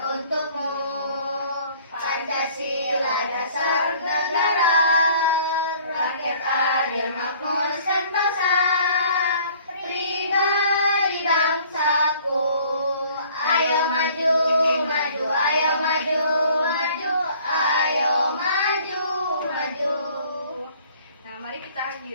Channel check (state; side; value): inverted; both; correlation -0.54